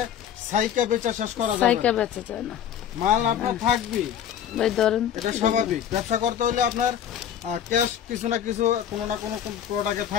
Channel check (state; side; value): quieter; right; 9.6 dB